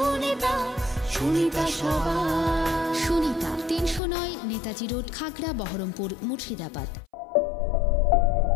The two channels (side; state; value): right; drops out; at 4.0 s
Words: সুনিতা সবার। সুনিতা 309 নেতাজি রোড, খাগড়া, বহরমপুর, মুর্শিদাবাদ।